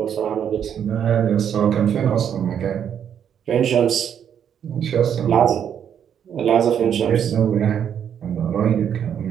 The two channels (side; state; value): left; quieter; 8.7 dB